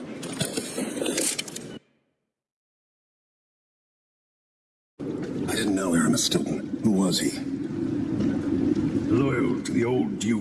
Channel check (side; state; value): both; identical; correlation 1.00